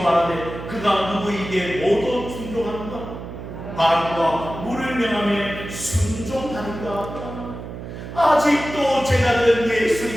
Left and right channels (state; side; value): noise; right; hum, 10 dB below the sound